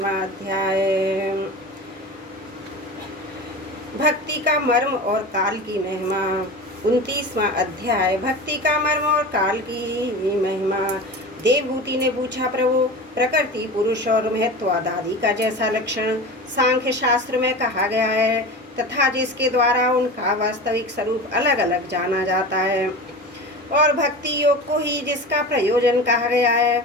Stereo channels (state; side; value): normal; both; correlation 0.31